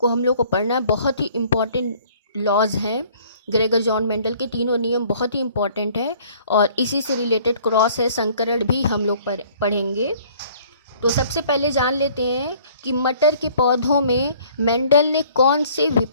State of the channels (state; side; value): inverted; both; correlation -0.56